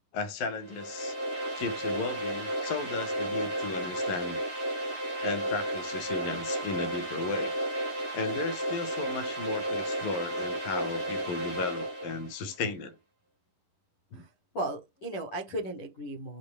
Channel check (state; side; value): late; right; 11 ms